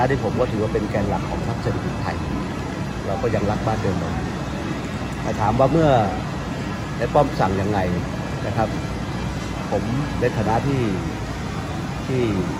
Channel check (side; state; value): both; identical; correlation 1.00